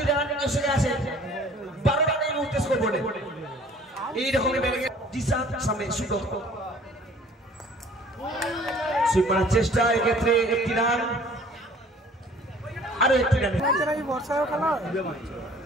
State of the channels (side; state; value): both; normal; correlation 0.52